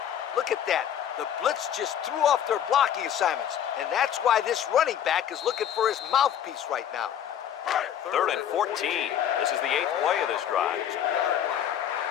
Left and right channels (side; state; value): right; quieter; 9.8 dB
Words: Look at that. The blitz just threw off their blocking assignments, and that's why this running back is looking for his mouthpiece right now. Third and 14. This is the 8th play of this drive.